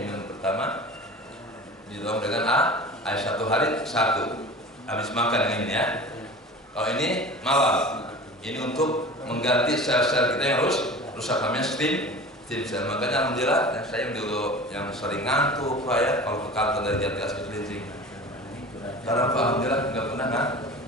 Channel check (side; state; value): both; normal; correlation 0.37